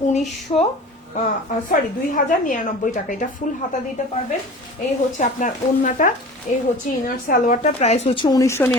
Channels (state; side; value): normal; both; correlation 0.39